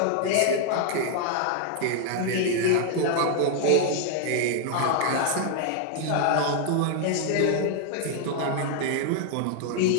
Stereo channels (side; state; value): both; different; correlation 0.00